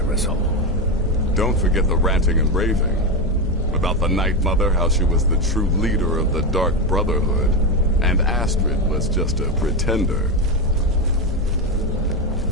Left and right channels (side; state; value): both; normal; correlation 0.12